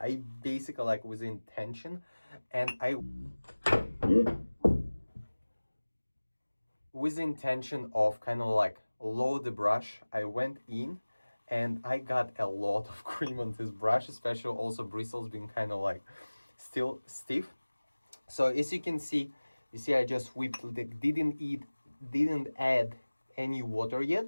basically, like, with intention, and with the intention of kind of like load the brush, I went in and I got a lot of cream on this brush, especially also bristles being kind of like still stiff. So as you can see, I just whipped, didn't add any water yet.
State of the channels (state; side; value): inverted; both; correlation -1.00